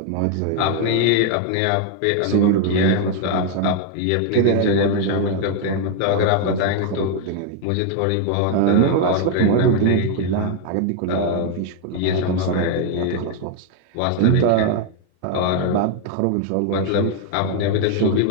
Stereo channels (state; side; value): different; both; correlation 0.01